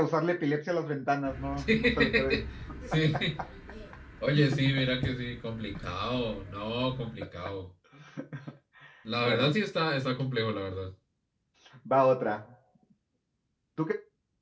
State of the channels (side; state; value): both; identical; correlation 1.00